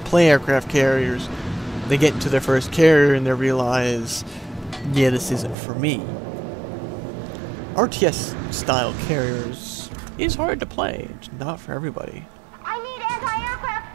to play aircraft carriers, they get into their first carrier and they realize, yeah, this isn't for me. RTS style carriers is hard to play, it's not for everybody. I need anti-aircraft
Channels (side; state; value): left; drops out; at 5.6 s